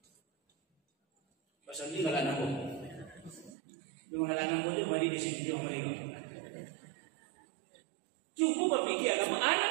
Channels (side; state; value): left; drops out; at 3.5 s